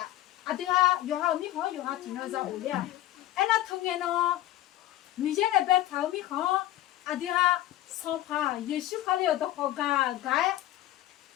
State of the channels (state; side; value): quieter; right; 14.4 dB